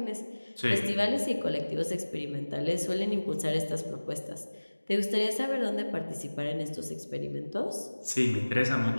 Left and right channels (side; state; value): both; inverted; correlation -1.00